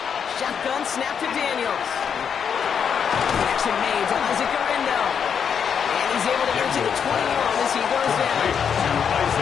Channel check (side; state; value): right; quieter; 7.3 dB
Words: Shotgun snap to Daniels. Action made to Isaac Garindo. And he's able to get to the 21 as he goes down.